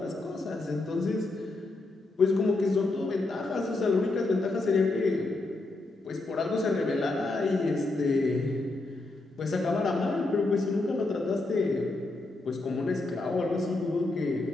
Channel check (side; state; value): right; quieter; 3.1 dB